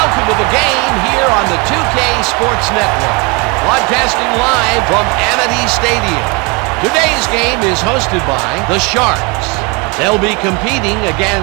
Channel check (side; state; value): left; quieter; 29.3 dB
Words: welcome to the game here on the 2K Sports Network. Broadcasting live from Amity Stadium. Today's game is hosted by the Sharks. They'll be competing